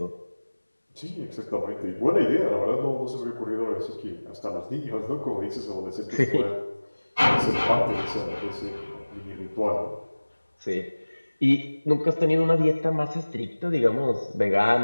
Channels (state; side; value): inverted; both; correlation -1.00